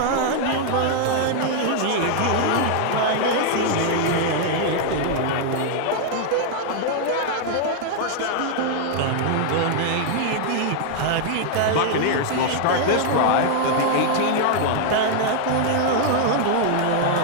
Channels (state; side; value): different; both; correlation 0.00